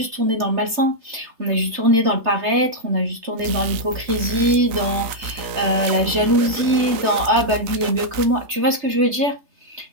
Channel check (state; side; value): late; left; 3.3 ms